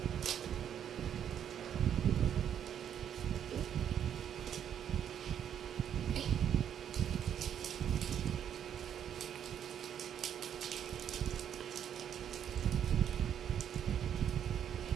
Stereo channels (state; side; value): quieter; left; 9.2 dB